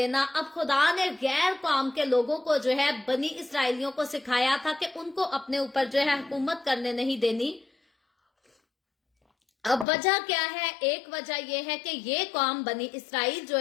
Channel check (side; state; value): right; drops out; at 9.9 s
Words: अब खुदा ने गैर कौम के लोगों को जो है बनी इसराइलियों को सिखाया था कि उनको अपने ऊपर जो है हुकूमत करने नहीं देनी। अब वजह क्या है? एक वजह यह है कि ये कौम बनी इसराइल जो